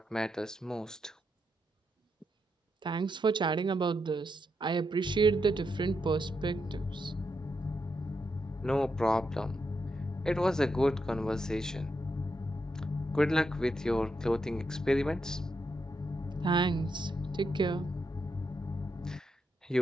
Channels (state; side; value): normal; both; correlation 0.83